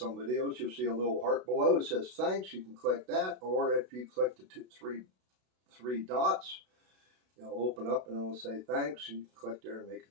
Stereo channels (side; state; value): left; late; 32 ms